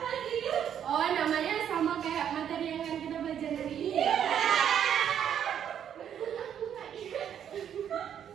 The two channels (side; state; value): left; quieter; 9.2 dB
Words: Oh, namanya sama kayak materi yang akan kita belajar hari ini.